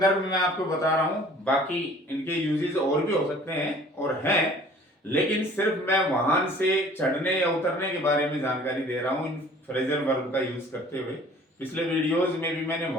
में मैं आपको बता रहा हूं, बाकी इनके यूजेस और भी हो सकते हैं और हैं, लेकिन सिर्फ मैं वाहन से चढ़ने या उतरने के बारे में जानकारी दे रहा हूं इन फ्रेजल वर्ब का यूज करते हुए। पिछले वीडियोस में भी मैंने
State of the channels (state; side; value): normal; both; correlation 0.51